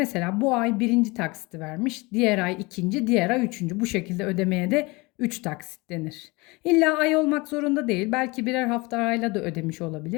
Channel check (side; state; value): right; quieter; 24.7 dB